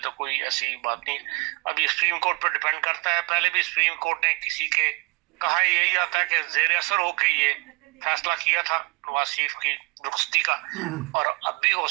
تو کوئی ایسی بات نہیں۔ اب یہ سپریم کورٹ پر ڈیپینڈ کرتا ہے، پہلے بھی سپریم کورٹ نے کسی کے کہا یہی آتا ہے کہ زیر اثر ہو کے یہ فیصلہ کیا تھا نواز شریف کی رخصتی کا، اور اب بھی ہو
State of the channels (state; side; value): quieter; left; 26.9 dB